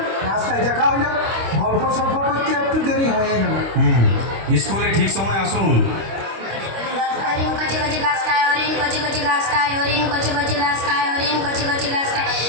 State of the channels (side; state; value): left; late; 25 ms